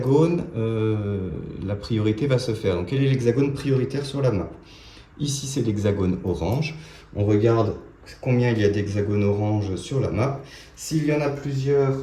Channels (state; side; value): identical; both; correlation 1.00